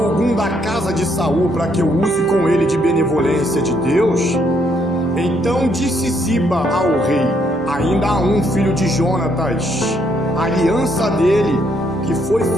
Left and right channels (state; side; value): normal; both; correlation 0.72